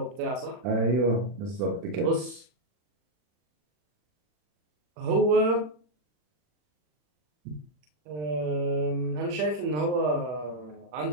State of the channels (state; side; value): late; left; 40 ms